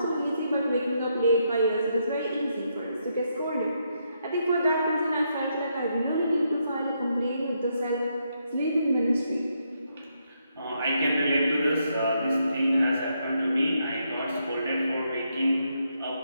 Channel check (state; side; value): inverted; both; correlation -0.78